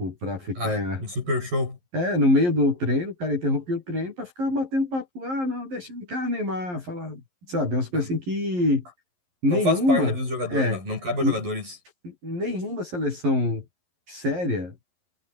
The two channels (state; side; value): late; left; 11 ms